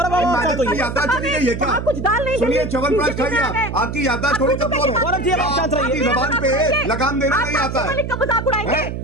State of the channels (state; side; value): noise; right; hum, 6 dB below the sound